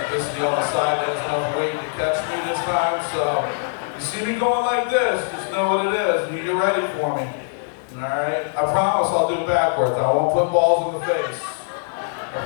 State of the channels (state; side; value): silent; right; digital silence